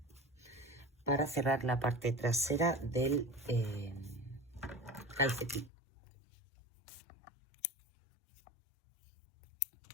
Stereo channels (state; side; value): drops out; right; at 5.7 s